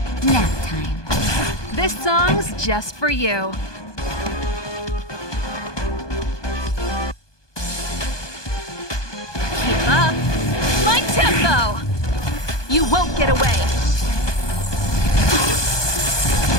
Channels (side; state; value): right; late; 1.2 ms